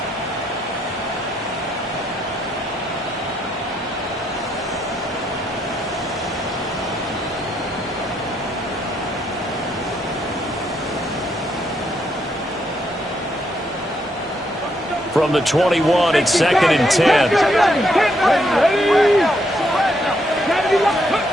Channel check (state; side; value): normal; both; correlation 0.75